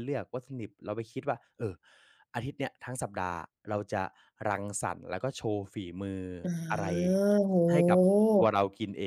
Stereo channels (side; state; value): both; identical; correlation 1.00